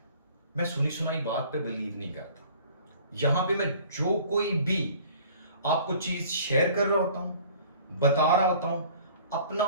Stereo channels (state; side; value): inverted; both; correlation -0.50